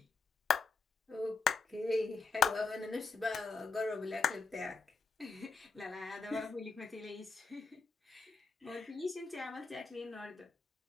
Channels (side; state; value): right; quieter; 4.4 dB